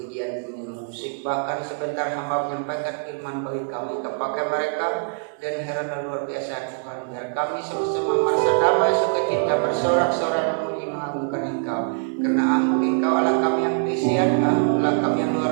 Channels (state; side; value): silent; left; digital silence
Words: musik, bahkan sebentar hamba menyampaikan firman bagi kami, kepakai mereka dan karena luar biasa Tuhan, biar kami sama-sama merasa damai sukacita bersorak-sorai memuji mengagungkan Engkau, karena Engkau Allah kami yang berisian, Allah kami yang